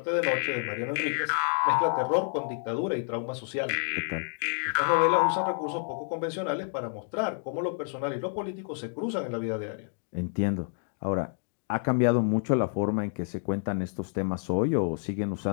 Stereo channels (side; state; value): right; silent; digital silence